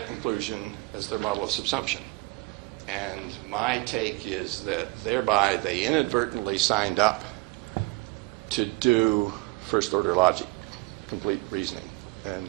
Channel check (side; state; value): left; quieter; 24.1 dB